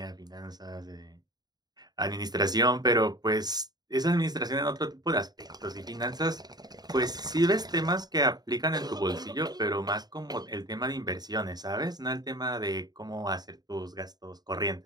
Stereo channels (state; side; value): late; left; 0.19 ms